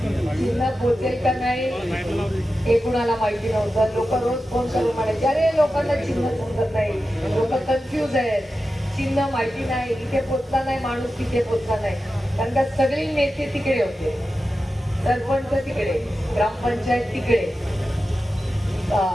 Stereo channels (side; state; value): both; normal; correlation 0.92